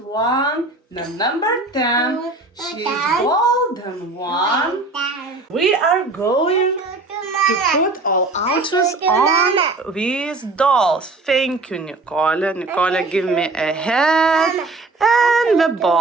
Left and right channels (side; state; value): left; quieter; 3.3 dB